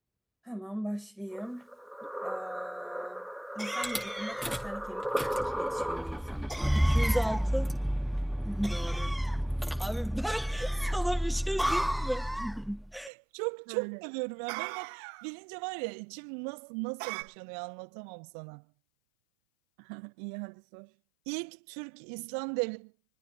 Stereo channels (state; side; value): drops out; left; at 13.1 s